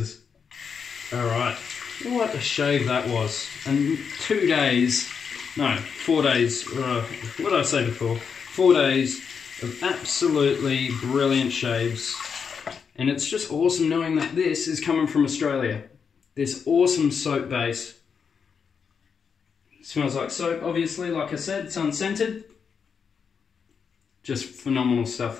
Alright, what a shave that was. And 2 days, no, 4 days, what did I say before? 4 days of absolutely brilliant shaves. And it's just awesome knowing that this is coming from Australia. This awesome soap base. Smells like soap, obviously, like I said, it's unscented. Just phenomenal stuff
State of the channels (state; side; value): quieter; right; 6.3 dB